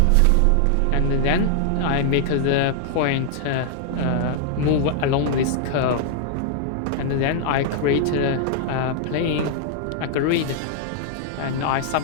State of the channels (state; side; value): different; both; correlation -0.01